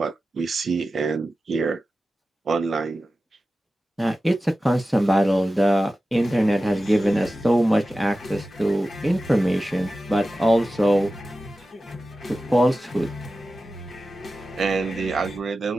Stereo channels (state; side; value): normal; both; correlation 0.94